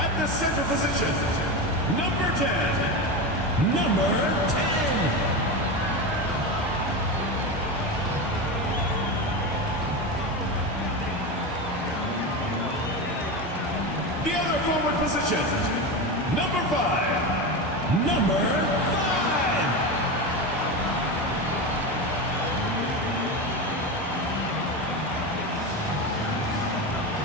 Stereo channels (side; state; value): both; normal; correlation 0.20